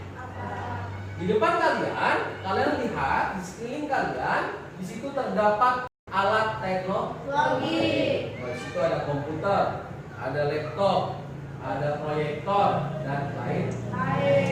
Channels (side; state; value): both; identical; correlation 1.00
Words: apa. Di depan kalian lihat di sekeliling kalian, di situ terdapat alat teknologi. Di situ ada komputer, ada laptop, ada proyektor dan lain.